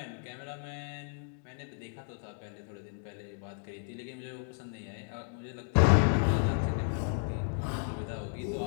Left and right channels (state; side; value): silent; right; 56 dB below the other